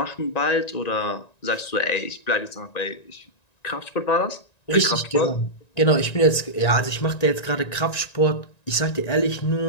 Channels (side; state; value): right; late; 1.9 ms